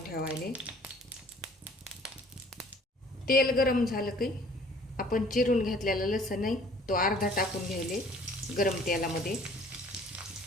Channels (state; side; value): normal; both; correlation 0.54